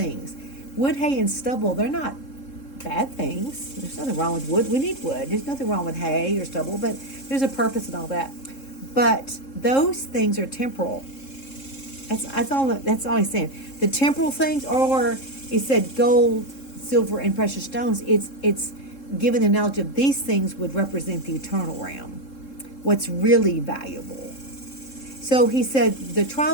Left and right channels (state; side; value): late; right; 3.7 ms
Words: Wood, hay, and stubble, they're not bad things. There's nothing wrong with wood. We need wood. There's nothing wrong with hay or stubble, but there's a purpose and all that. But those things are temporal. That's all he's saying. The temporal things, or he said gold, silver, and precious stones, it's given the analogy of these things would represent the eternal realm, what's really valuable. So he said the